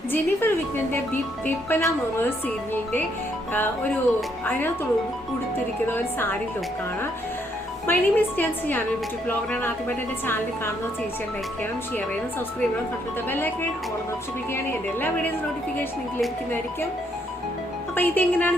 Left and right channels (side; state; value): both; normal; correlation 0.72